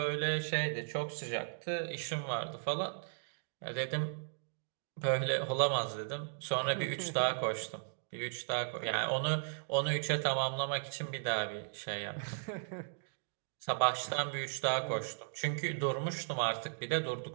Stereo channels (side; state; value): left; silent; digital silence